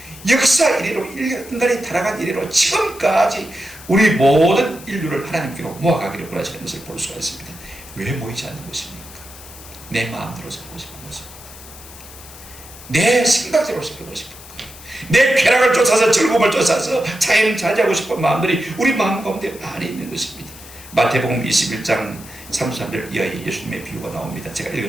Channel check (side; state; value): left; noise; hiss, 17 dB below the sound